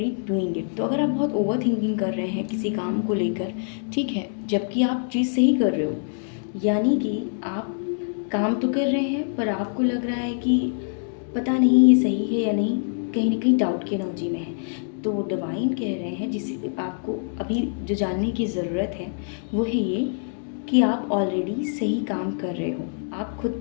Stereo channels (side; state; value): right; silent; digital silence